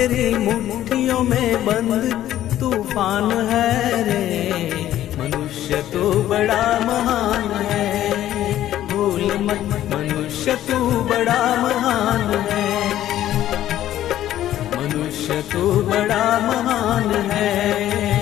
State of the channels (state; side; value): quieter; right; 12.7 dB